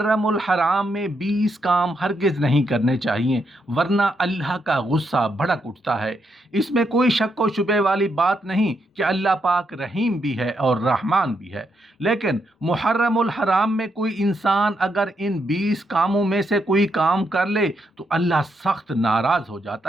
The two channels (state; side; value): normal; both; correlation 0.79